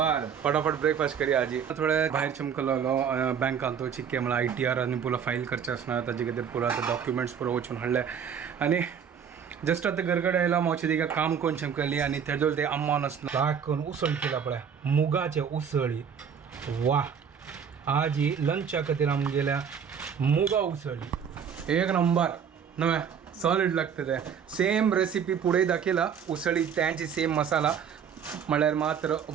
फटाफट ब्रेकफास्ट करी आजी थोडे भायर चमकलो बँकान तो चिक्के मला ITR आणि पुला फाईल करचे असणार ताजे खातीर पुरा डॉक्युमेंट्स पुरो वचून हाडले आणि जस्ट आता घरकडे आयला मावची तिका काम कोण चमकली आणि तेजो ते अम्मान असणार लाग करून उसळ केला पळय मुगाचे उसळी वा आजी लंचा खातीर आम गेल्या मुगा उसळी एक नंबर नव्हे सॉलिड लागतं ते सेम रेसिपी पुढे दाखयला उसळी त्यांची सेम मसाला म्हळ्यार मात्र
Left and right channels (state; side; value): quieter; left; 7.5 dB